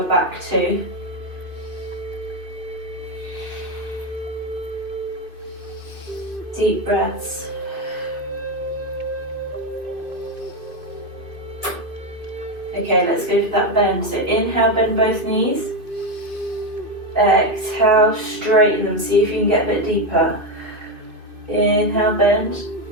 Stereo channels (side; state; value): left; late; 2.4 ms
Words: back too. Deep breaths. Okay, let's go for that bend. So inhale, bend both knees. Exhale, straighten them. See if you can get a bit deeper. Inhale, bend.